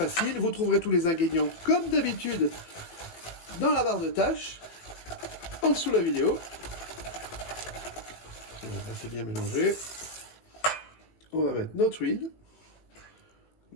Vous trouverez tous les ingrédients comme d'habitude dans la barre de tâches, en dessous de la vidéo. Là, c'est bien mélangé. On va mettre notre huile.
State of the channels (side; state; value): right; late; 18 ms